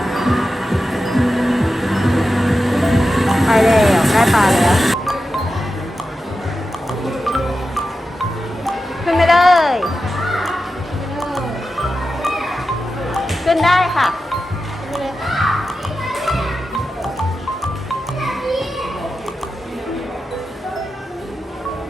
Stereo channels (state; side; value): normal; both; correlation 0.91